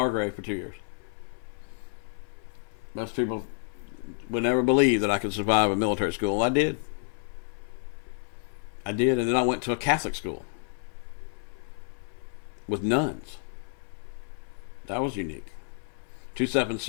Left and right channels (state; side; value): silent; right; 57 dB below the other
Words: for 2 years. Most people would never believe that I could survive a military school. I did, and then I went to a Catholic school with nuns. That was unique.